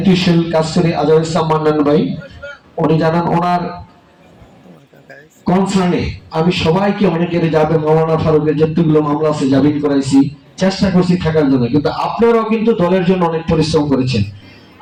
কাজ করি, আজহার ইসলাম মান্নান ভাই, উনি জানান ওনার কনসার্নে আমি সবাইকে অনেকের যাবে মাওলানা ফারুকের যতগুলো মামলা আছে জামিন করাইছি, চেষ্টা করছি থাকার জন্য। কিন্তু আপনারাও কিন্তু দলের জন্য অনেক পরিশ্রম করেছেন।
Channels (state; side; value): identical; both; correlation 1.00